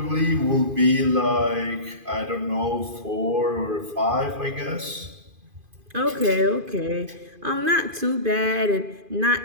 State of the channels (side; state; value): left; late; 2.5 ms